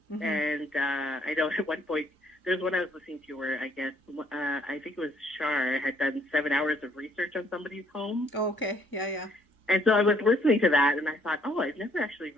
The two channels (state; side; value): normal; both; correlation 0.65